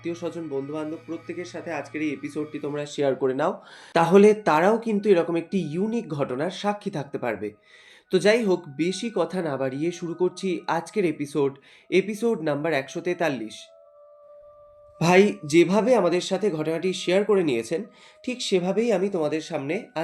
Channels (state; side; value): identical; both; correlation 1.00